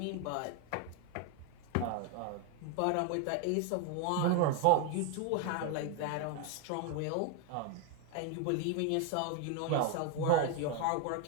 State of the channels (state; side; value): different; both; correlation 0.01